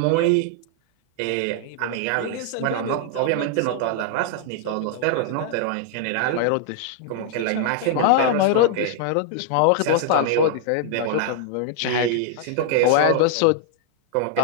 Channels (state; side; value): different; both; correlation -0.01